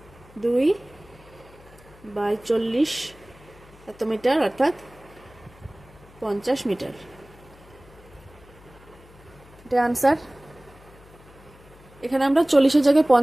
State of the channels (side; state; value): left; noise; hum, 24 dB below the sound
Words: 2/40 এত মিটার, অর্থাৎ 50 মিটার। এটা আনসার। এখানে আমরা 40-এর জায়গায়